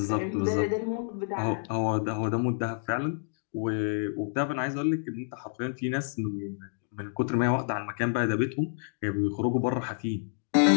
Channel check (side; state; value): right; silent; digital silence